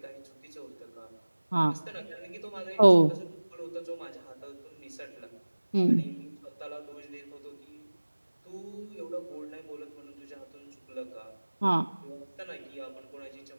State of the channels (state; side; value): inverted; both; correlation -1.00